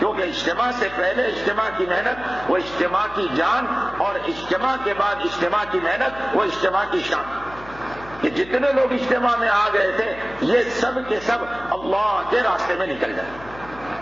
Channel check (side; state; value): left; noise; hum, 19 dB below the sound